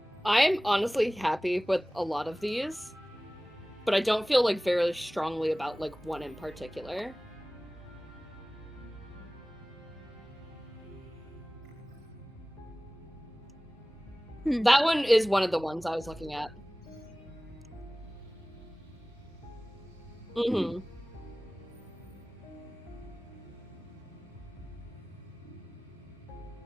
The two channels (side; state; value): both; normal; correlation 0.98